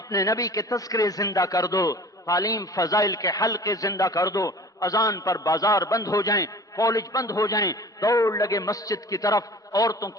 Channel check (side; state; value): both; normal; correlation 0.43